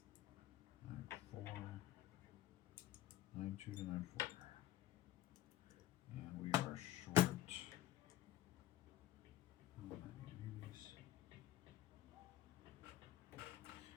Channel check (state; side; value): quieter; right; 13.8 dB